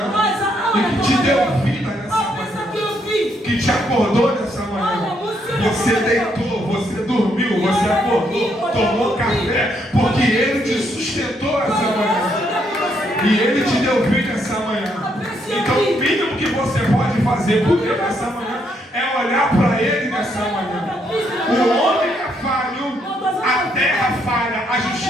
e que te deu vida nessa manhã, que te acordou nessa manhã. Você deitou, você dormiu, você acordou, tomou café, porque Ele te sustentou essa manhã. E Ele te deu vida essa manhã. Então fazer por ele nessa manhã é olhar para ele nessa manhã. O homem é falho, a terra falha, a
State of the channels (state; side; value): normal; both; correlation 0.74